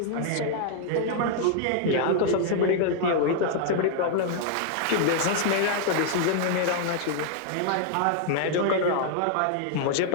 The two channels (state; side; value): different; both; correlation 0.00